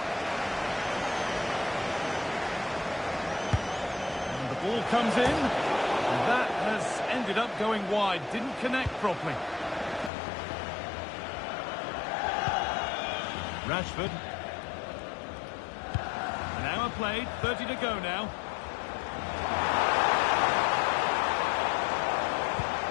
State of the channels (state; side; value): drops out; right; at 10.1 s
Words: Ball comes in, and that has ended up going wide. Didn't connect properly. Rashford. An hour played, 30 to go now.